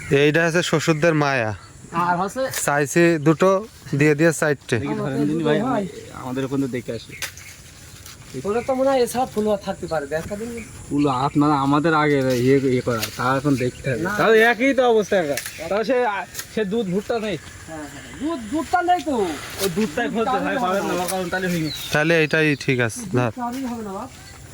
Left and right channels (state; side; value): identical; both; correlation 1.00